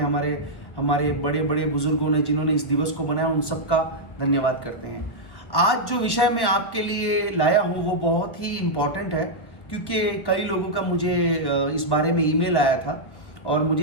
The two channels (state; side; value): late; right; 1.4 ms